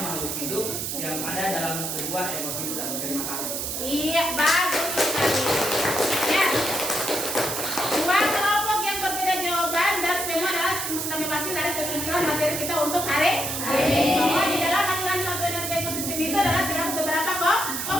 hidup yang ada dalam sebuah ekosistem. Terima kasih. Iya, bagus sekali. Ya. 2 kelompok yang berbeda jawaban dan semua adalah sudah mewakili dari kesimpulan materi kita untuk hari ini. Bahwa di dalam aliran satu energi ekosistem itu adalah terdapat beberapa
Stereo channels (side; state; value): right; noise; hiss, 3 dB below the sound